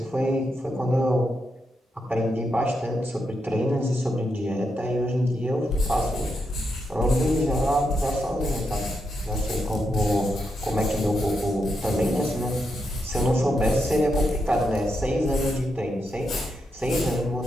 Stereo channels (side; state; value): both; normal; correlation 0.83